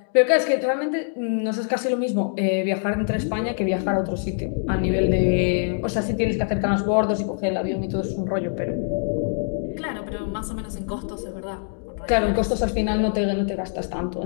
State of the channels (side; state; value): right; silent; digital silence